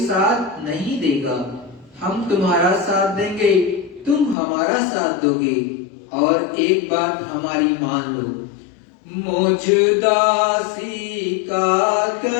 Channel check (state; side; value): drops out; right; at 4.4 s